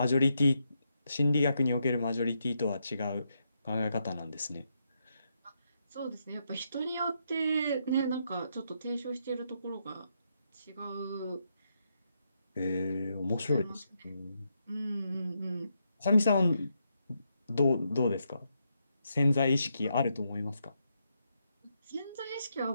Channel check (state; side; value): inverted; both; correlation -0.81